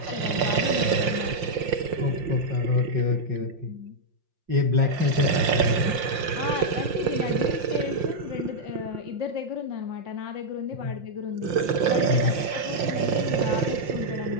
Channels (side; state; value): left; late; 5.7 ms